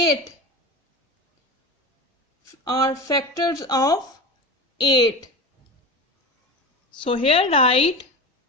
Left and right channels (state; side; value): normal; both; correlation 0.27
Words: are factors of 8. So here write